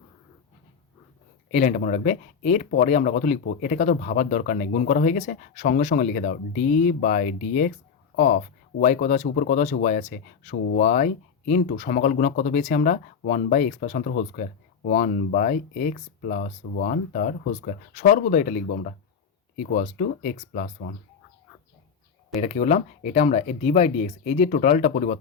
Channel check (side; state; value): right; quieter; 6.4 dB